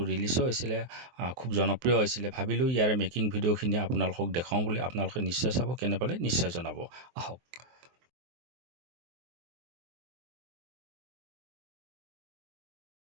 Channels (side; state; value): left; late; 23 ms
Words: ৰিলিজো হৈছিলে, খুব জনপ্ৰিয় হৈছিলে। ভাবিলোঁ ইয়াৰে মেকিং ভিডিঅ'খিনি আপোনালোকক দেখাওঁ বুলি। আপোনালোকে নিশ্চয় চাব, কেনে পালে নিশ্চয় জনাব। আহক।